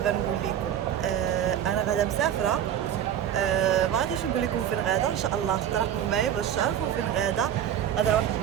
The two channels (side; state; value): left; quieter; 10.0 dB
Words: لكم، انا غادا مسافره. ما غاديش نقول لكم فين غادا، ان شاء الله تراقبوا معايا باش تعرفوا فين غادا. غادا لواحد